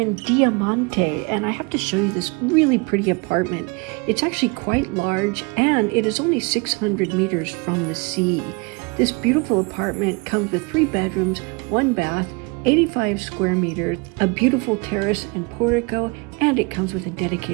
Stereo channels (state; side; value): quieter; left; 29.7 dB